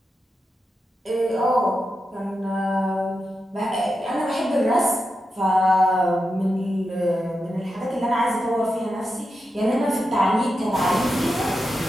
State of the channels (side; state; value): both; normal; correlation 0.88